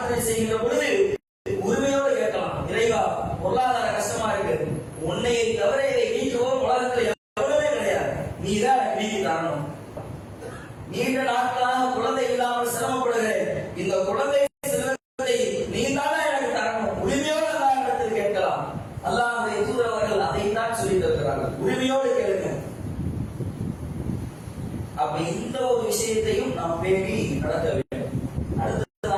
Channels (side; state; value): both; identical; correlation 1.00